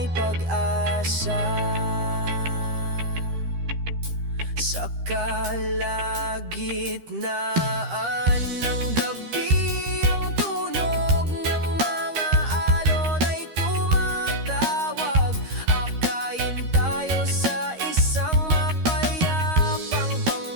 pag-asa. Sa kalagitnaan ng gabi, ang tunog ng mga alon ay tumatawag. Akayin tayo sa isang mapayapang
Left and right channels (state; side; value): late; left; 13 ms